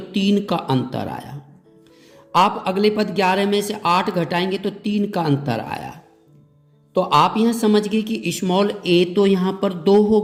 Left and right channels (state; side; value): identical; both; correlation 1.00